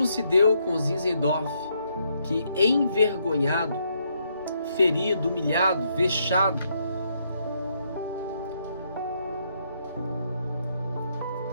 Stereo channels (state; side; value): inverted; both; correlation -0.75